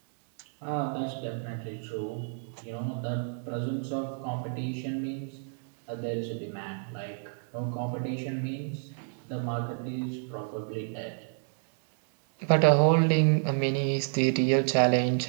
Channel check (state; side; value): silent; left; 58 dB below the other